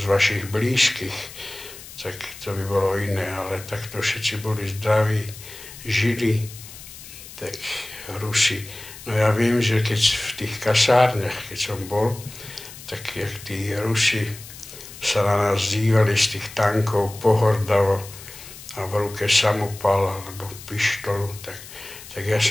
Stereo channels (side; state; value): left; noise; hiss, 16 dB below the sound